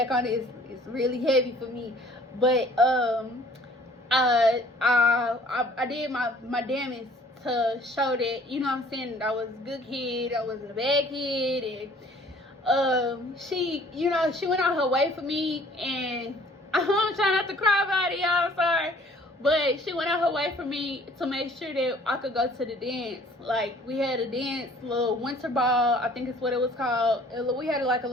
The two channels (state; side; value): normal; both; correlation 0.54